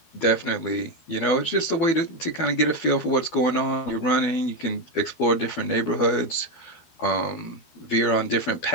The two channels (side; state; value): right; late; 12 ms